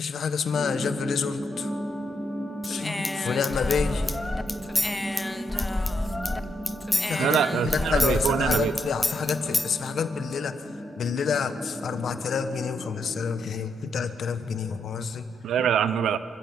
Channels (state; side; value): normal; both; correlation 0.79